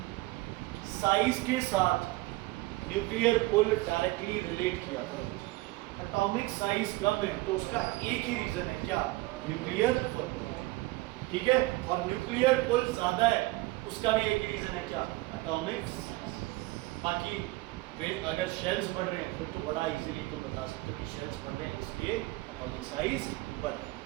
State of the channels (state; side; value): quieter; left; 21.0 dB